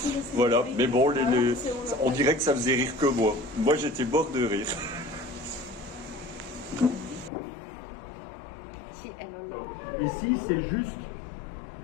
Voilà, mais bon, on dirait que ça faisait rire que moi. Moi, j'étais mort de rire. Ici, c'est juste,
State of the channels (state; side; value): drops out; right; at 7.3 s